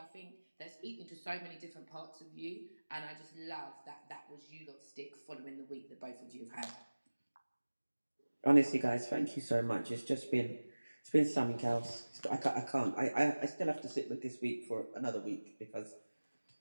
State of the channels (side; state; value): both; inverted; correlation -1.00